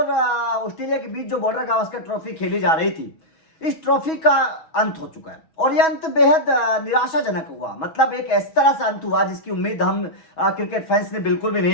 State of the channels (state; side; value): late; right; 6.2 ms